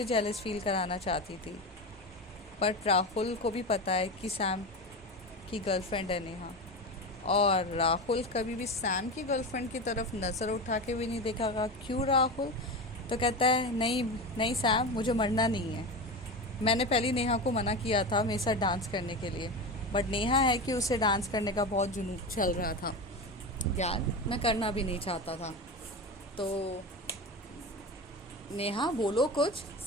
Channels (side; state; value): both; normal; correlation 0.23